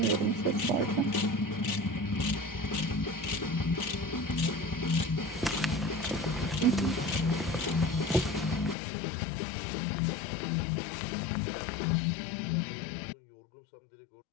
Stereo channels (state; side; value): drops out; right; at 8.8 s